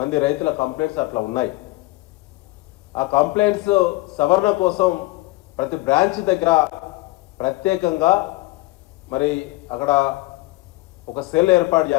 రైతుల కంప్లైంట్స్ అట్లా ఉన్నాయి. ఆ కంప్లైంట్స్ సవరణ కోసం ప్రతి బ్రాంచ్ దగ్గర ప్రత్యేకంగా మరి అక్కడ ఒక సెల్ ఏర్పాటు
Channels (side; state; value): right; quieter; 20.6 dB